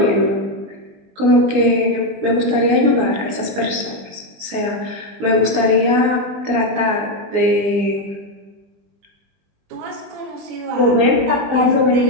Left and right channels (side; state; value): left; late; 20 ms